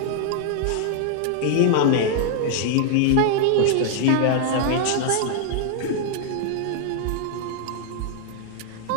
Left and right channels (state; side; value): different; both; correlation 0.00